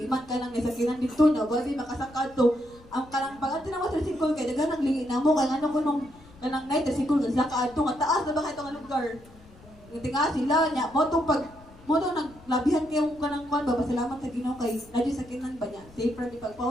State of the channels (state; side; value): noise; left; rumble, 24 dB below the sound